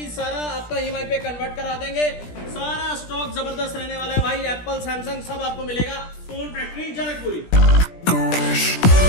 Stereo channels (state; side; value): late; right; 17 ms